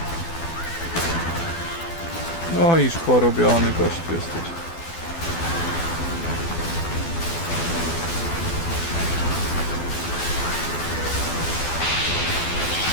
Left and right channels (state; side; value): late; right; 12 ms